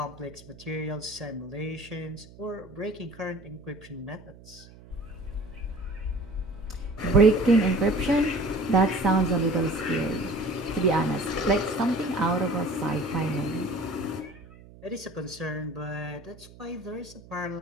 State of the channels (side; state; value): right; noise; hum, 21 dB below the sound